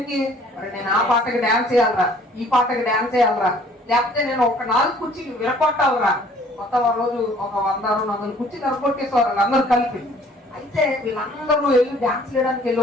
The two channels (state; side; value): normal; both; correlation 0.56